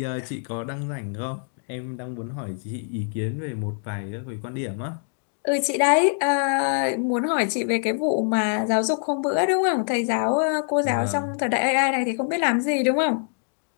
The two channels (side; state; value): right; silent; 62 dB below the other